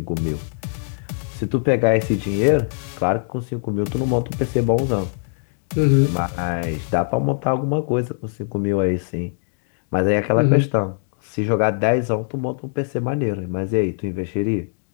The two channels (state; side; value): silent; right; 62 dB below the other